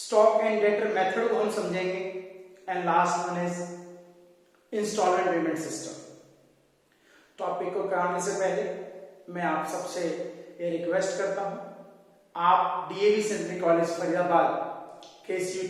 एंड डेटर मेथड को हम समझेंगे, and last one is installment payment system. Topic को कराने से पहले मैं आप सबसे ये रिक्वेस्ट करता हूं, आप डीएवी सेंट्रल कॉलेज फरीदाबाद के इस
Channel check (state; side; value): identical; both; correlation 1.00